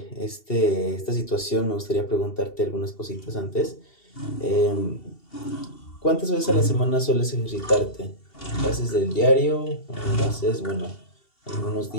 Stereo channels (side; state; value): right; late; 2.7 ms